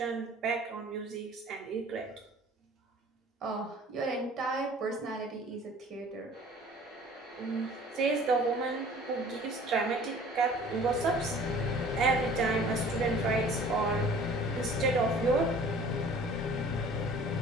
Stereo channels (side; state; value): both; normal; correlation 0.49